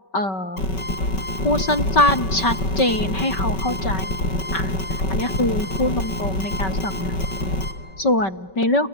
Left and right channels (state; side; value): late; right; 5.2 ms